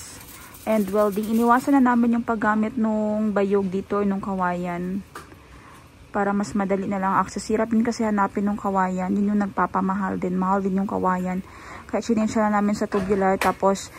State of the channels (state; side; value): identical; both; correlation 1.00